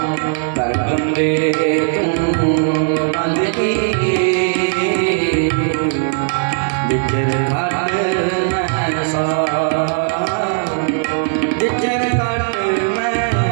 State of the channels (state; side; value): silent; left; 68 dB below the other